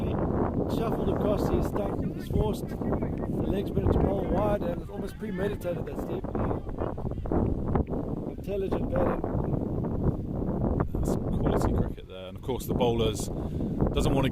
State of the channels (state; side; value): identical; both; correlation 1.00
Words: shuffled across his stump. He's forced the the legs better to bowl wide, and it's almost premeditated, that Steve. Intelligent batting. That's quality cricket there, and of course the bowlers doesn't want to